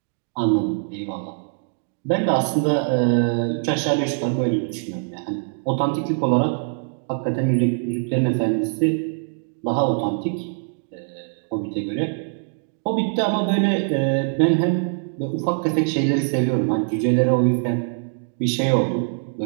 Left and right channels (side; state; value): left; silent; digital silence